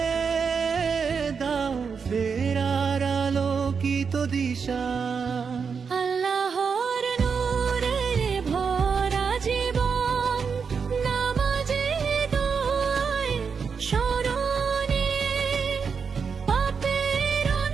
দাও ফেরার আলোকিত দিশা। আল্লাহর নূরে ভরা জীবন, নামাজে দোয়ায় স্মরণে পাপের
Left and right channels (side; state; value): left; quieter; 5.9 dB